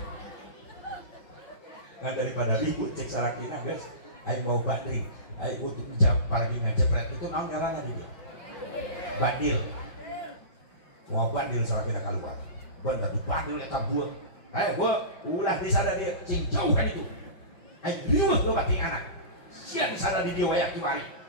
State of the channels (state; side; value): late; right; 5.1 ms